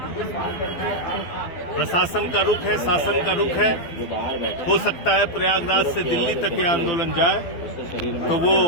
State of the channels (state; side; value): late; right; 12 ms